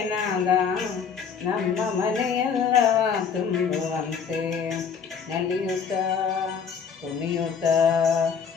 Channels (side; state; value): right; quieter; 6.5 dB